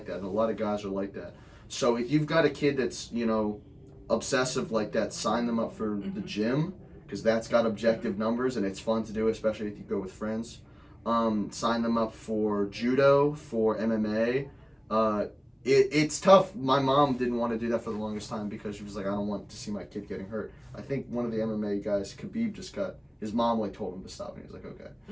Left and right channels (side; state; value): both; identical; correlation 1.00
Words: that, and a lot of guys are like that. So if you've got a kid that's obsessive like that, sign them up for the gym, because that's got objective numbers and it's fun to do, especially if you go with friends. Sign them up for judo, for MMA. It's tough. My mom didn't want to do that for the longest time because she was like, I don't want to see my kid getting hurt. I think one of the MMA guys, Khabib, his mom told him to stop, and he was like, okay.